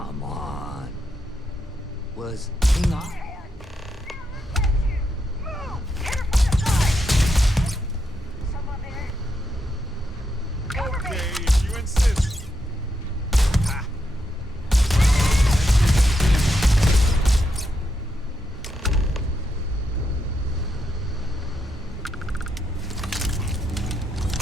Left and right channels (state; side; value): normal; both; correlation 0.81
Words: on. Was King Ar- Okay, if you insist.